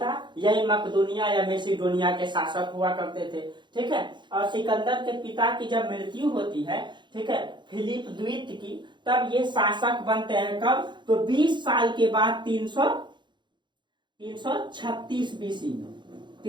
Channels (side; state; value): left; late; 0.22 ms